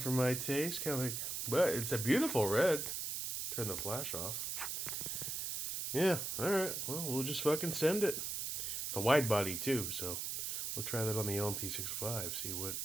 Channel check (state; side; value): noise; right; hiss, 3 dB below the sound